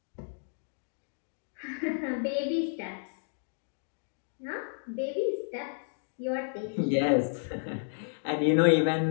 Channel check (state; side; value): silent; right; digital silence